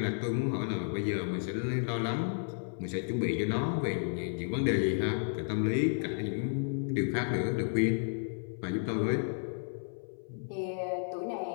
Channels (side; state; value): right; silent; 56 dB below the other